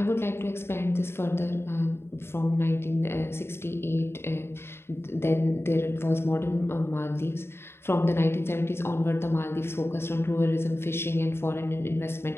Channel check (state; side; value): late; right; 0.12 ms